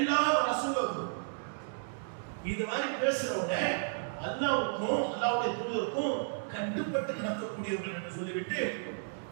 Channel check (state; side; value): silent; left; digital silence